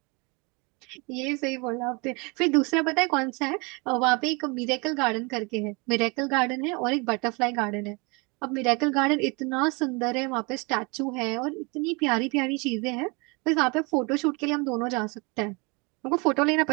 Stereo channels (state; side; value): quieter; left; 29.2 dB